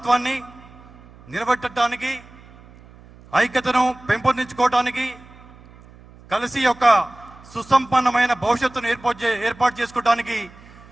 నిలబెట్టడానికి, ఐక్యతను పెంపొందించుకోవటానికి, కలిసి యొక్క సుసంపన్నమైన భవిష్యత్తును ఏర్పాటు చేసుకోవడానికి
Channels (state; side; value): noise; right; hum, 23 dB below the sound